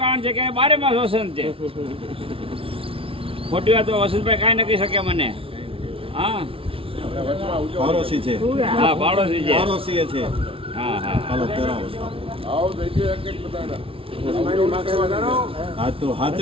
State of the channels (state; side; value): late; left; 0.26 ms